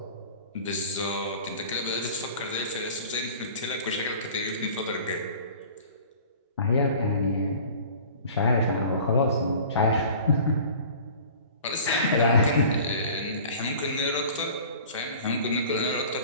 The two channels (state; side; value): inverted; both; correlation -0.44